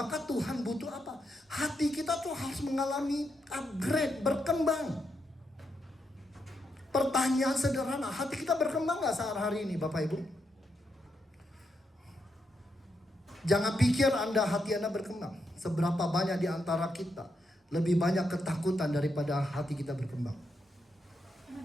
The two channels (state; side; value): normal; both; correlation 0.82